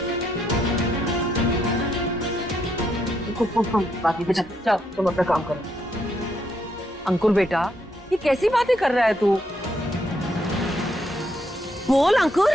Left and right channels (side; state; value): both; normal; correlation 0.76